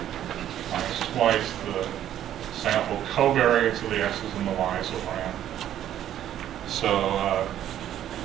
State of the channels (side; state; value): left; quieter; 11.3 dB